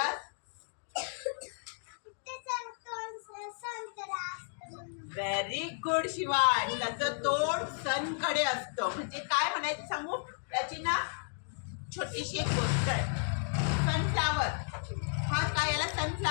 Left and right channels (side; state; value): right; silent; digital silence